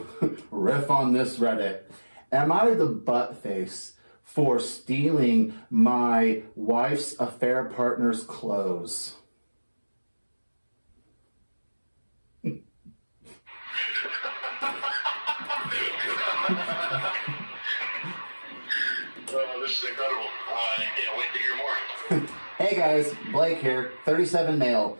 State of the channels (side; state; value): both; inverted; correlation -1.00